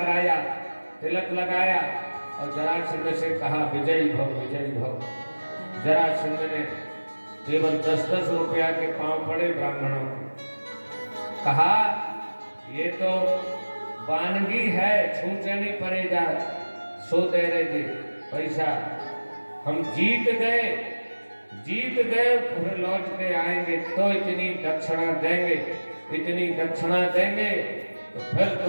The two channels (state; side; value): inverted; both; correlation -1.00